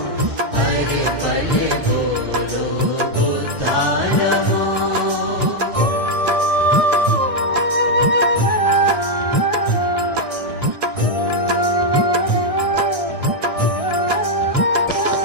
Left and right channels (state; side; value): late; left; 1.6 ms